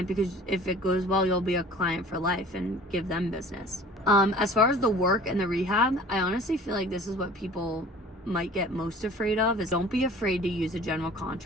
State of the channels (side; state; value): both; normal; correlation 0.46